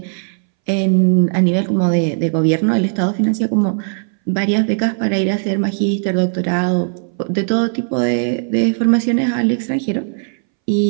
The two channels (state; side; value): silent; left; 65 dB below the other